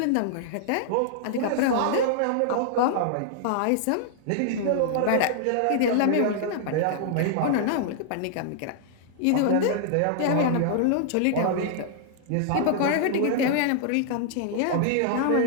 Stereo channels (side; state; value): both; different; correlation -0.01